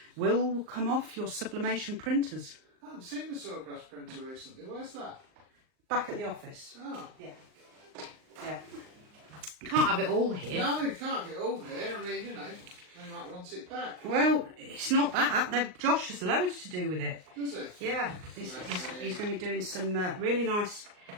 will come off your sublimation printers. I haven't seen the sawgrass printer recently. Where's that? Back at the office. Oh. Yeah. Yeah. Can't have it all here. No, you can't get all here. I mean, they might want it back. Well, it's not that. Josh has loads to do with it. Does it? Yeah, he's going to be doing some really nice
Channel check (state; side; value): late; left; 39 ms